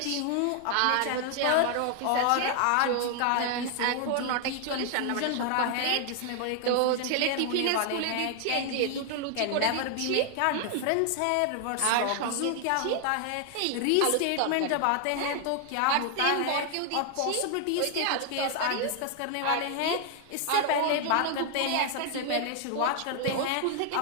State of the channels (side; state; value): both; different; correlation 0.00